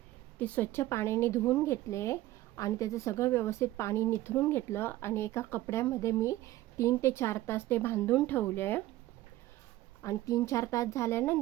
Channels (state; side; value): quieter; left; 16.2 dB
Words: ते स्वच्छ पाण्याने धुवून घेतले आणि त्याचं सगळं व्यवस्थित पाणी निथरून घेतलं आणि एका कपड्यामध्ये मी 3 ते 4 तास ते बांधून ठेवले आणि 3-4 तास